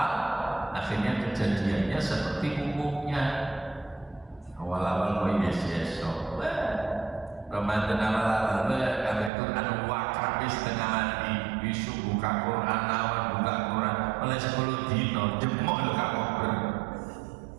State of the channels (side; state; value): left; drops out; at 9.3 s